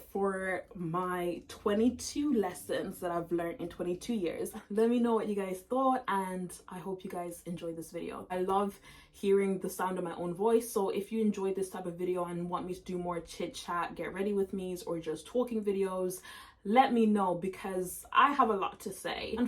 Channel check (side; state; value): both; identical; correlation 1.00